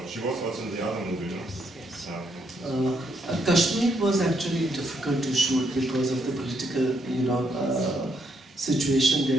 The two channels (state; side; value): normal; both; correlation 0.75